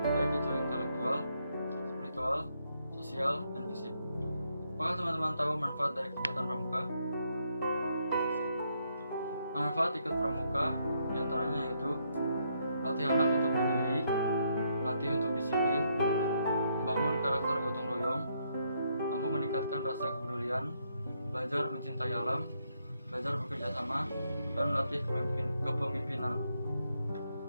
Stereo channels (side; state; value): both; inverted; correlation -0.76